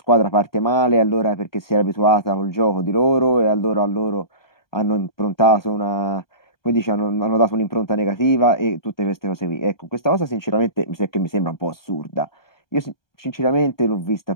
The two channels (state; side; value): late; right; 1.2 ms